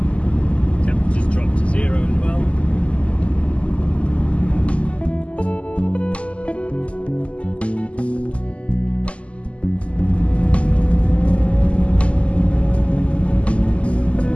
Temperatures dropped to 0 as well.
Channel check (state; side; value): late; right; 0.060 ms